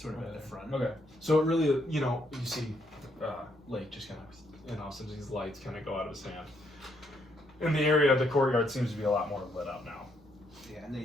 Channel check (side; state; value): both; normal; correlation 0.74